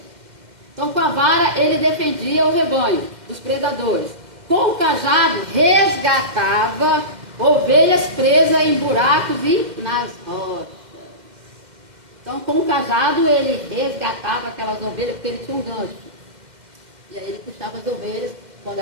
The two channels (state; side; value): late; left; 2.1 ms